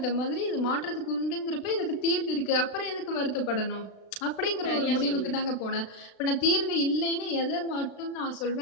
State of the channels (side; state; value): right; late; 36 ms